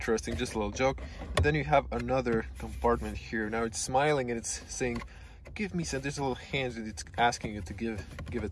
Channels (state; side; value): identical; both; correlation 1.00